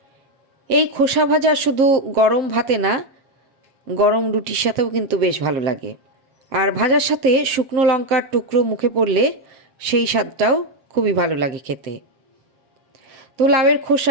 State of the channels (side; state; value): left; late; 7.5 ms